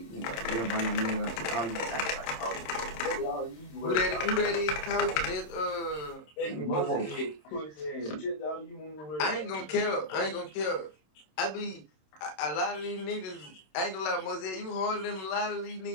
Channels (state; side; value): late; right; 26 ms